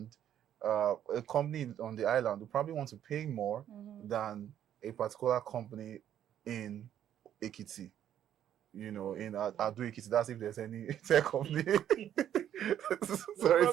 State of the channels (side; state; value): left; quieter; 10.5 dB